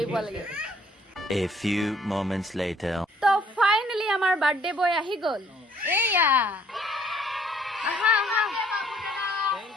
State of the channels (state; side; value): normal; both; correlation 0.62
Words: পোৱা লাগে A few moments later. তো ফাইনালি আমাৰ বাৰ্থডে বয় আহি গ'ল এয়া আহা আহা Thank